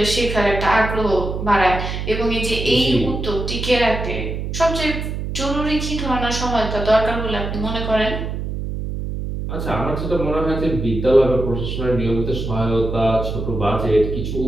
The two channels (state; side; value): noise; right; hum, 4 dB below the sound